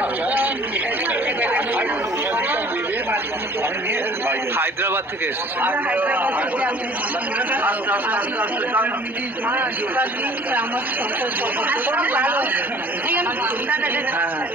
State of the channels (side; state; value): both; normal; correlation 0.50